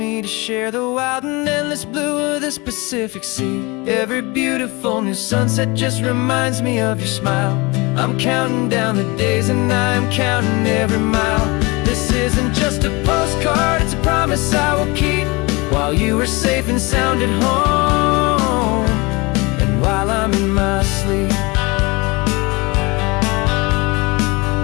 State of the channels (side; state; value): right; quieter; 25.6 dB